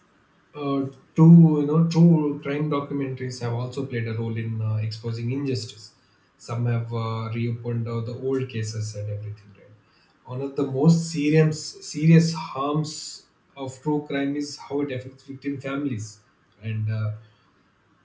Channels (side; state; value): both; identical; correlation 1.00